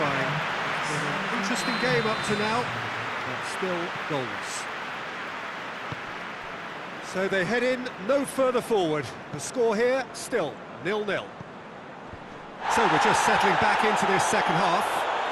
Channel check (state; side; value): identical; both; correlation 1.00